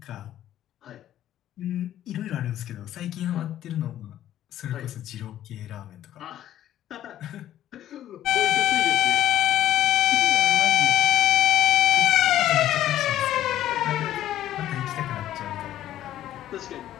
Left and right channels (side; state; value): right; quieter; 12.4 dB